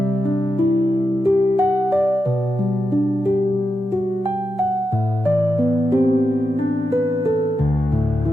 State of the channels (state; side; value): normal; both; correlation 0.87